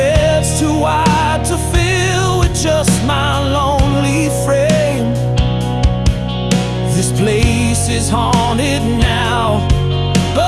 too wide to fill with just my lonely frame. This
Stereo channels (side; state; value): both; identical; correlation 1.00